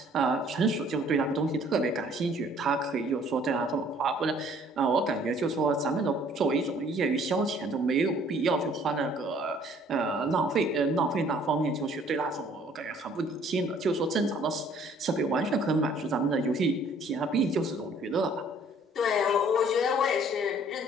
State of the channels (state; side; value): normal; both; correlation 0.58